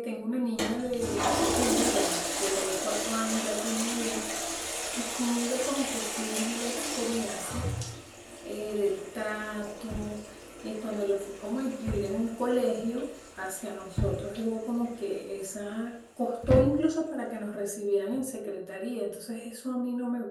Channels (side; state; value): both; identical; correlation 1.00